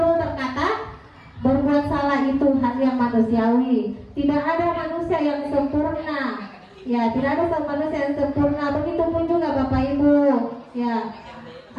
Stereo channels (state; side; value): identical; both; correlation 1.00